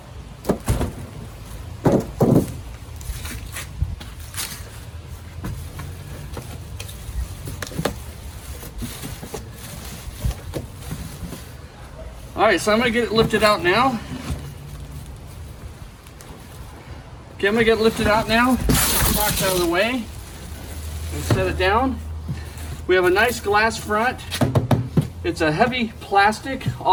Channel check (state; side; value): identical; both; correlation 1.00